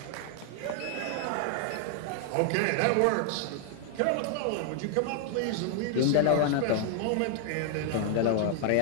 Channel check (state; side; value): different; both; correlation -0.01